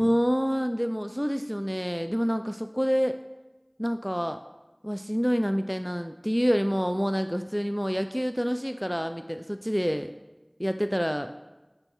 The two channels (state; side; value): identical; both; correlation 1.00